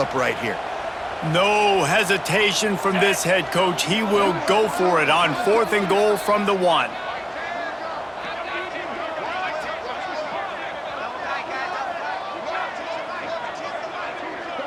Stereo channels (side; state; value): both; identical; correlation 1.00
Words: right here. No hesitation from this head coach. He will go for it on 4th and goal from the 1.